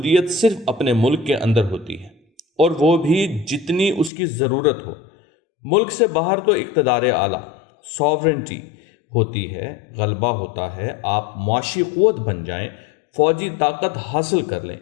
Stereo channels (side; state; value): right; drops out; at 4.1 s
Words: صرف اپنے ملک کے اندر ہوتی ہے، اور وہ بھی جتنی اس کی ضرورت ہو۔ ملک سے باہر تو اقتدار اعلیٰ، ساورنٹی ہوتی ہے، غلبہ ہوتا ہے، آپ معاشی قوت بن جائیں، فوجی طاقت حاصل کر لیں،